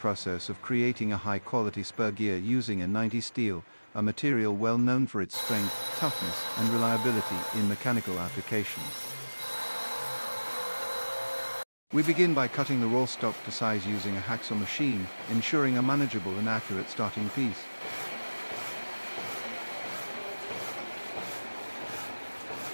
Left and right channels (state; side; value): inverted; both; correlation -1.00